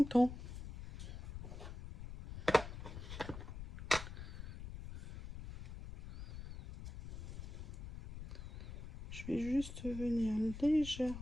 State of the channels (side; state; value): left; noise; rumble, 9 dB below the sound